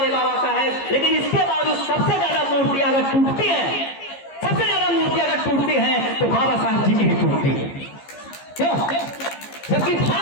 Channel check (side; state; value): right; late; 15 ms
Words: बाबा साहब, लेकिन इसके बावजूद सबसे ज्यादा मूर्तियां अगर टूटती हैं, सबसे ज्यादा मूर्तियां अगर टूटती हैं तो बाबा साहब जी की ही टूटती है। क्यों? जबकि